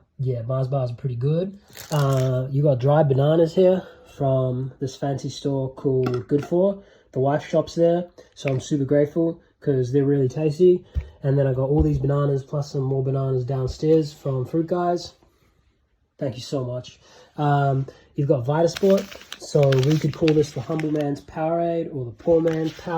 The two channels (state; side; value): identical; both; correlation 1.00